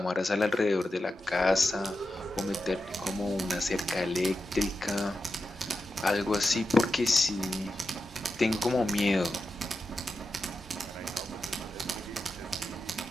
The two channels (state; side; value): normal; both; correlation 0.89